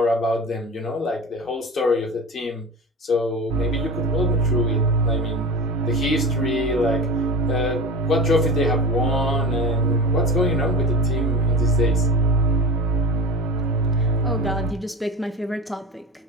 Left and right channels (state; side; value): normal; both; correlation 0.31